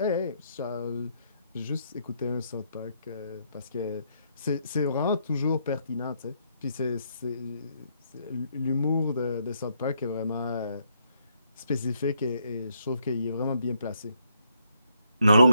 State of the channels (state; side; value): inverted; both; correlation -0.74